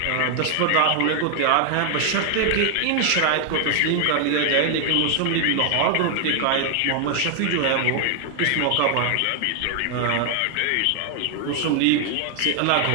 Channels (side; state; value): both; different; correlation 0.00